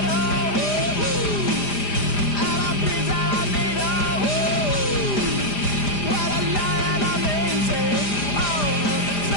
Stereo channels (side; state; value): right; late; 5.0 ms